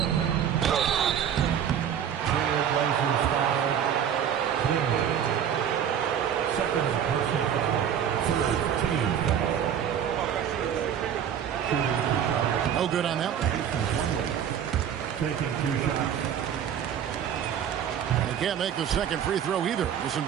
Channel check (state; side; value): quieter; left; 9.0 dB